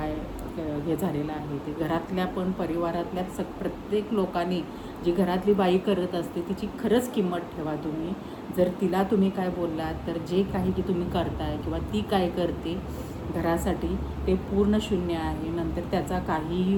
हे झालेलं आहे ते. घरातल्या पण परिवारातल्या प्रत्येक लोकांनी जी घरातली बाई करत असते तिची खरंच किंमत ठेवा तुम्ही. जर तिला तुम्ही काय बोललात तर जे काही की तुम्ही करताय किंवा ती काय करते घरासाठी ते पूर्ण शून्य आहे. नंतर त्याचा काहीही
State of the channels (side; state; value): both; identical; correlation 1.00